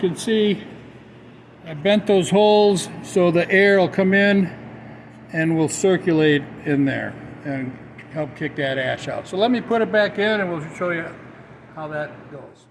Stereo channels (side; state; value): both; identical; correlation 1.00